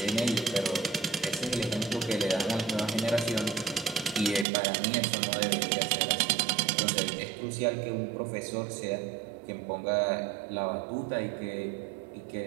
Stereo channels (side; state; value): left; drops out; at 4.5 s